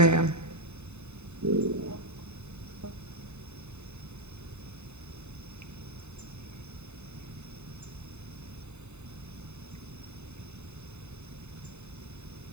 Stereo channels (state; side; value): late; left; 0.82 ms